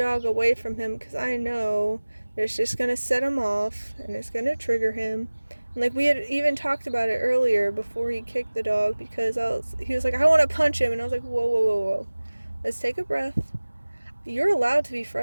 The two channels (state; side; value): inverted; both; correlation -1.00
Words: away from him, because I know that it's just going to set him off and it's going to trigger him. And like we had even talked about it earlier before he kicked the dog, because he was like, I want to punch him, and I was like, whoa, let's take a breath. You're allowed to be